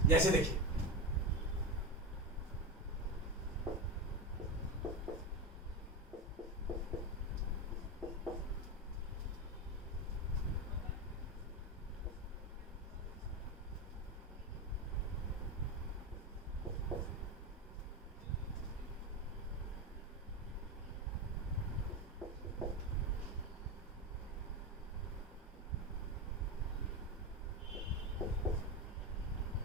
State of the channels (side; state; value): both; normal; correlation 0.17